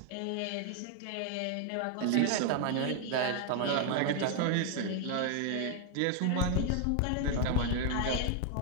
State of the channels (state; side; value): different; both; correlation 0.00